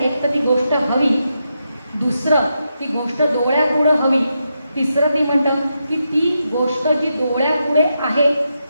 तर ती गोष्ट हवी, दुसरं ती गोष्ट डोळ्यापुढं हवी, तिसरं ती म्हणतं की ती गोष्ट जी डोळ्यापुढे आहे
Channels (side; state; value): both; inverted; correlation -0.85